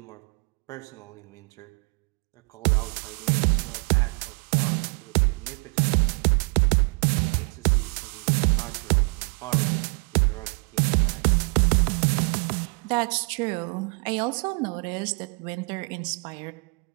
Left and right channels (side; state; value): left; quieter; 33.6 dB